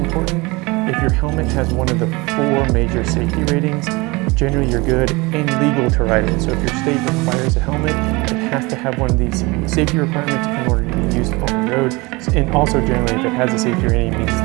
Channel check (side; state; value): left; quieter; 24.5 dB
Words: If your helmet has one of the 4 major safety ratings, generally you're good and legal to ride it. So if your state requires a helmet, it has to have one of these safety requirements in order to be used on the road. And also generally, if it has a safety rating, it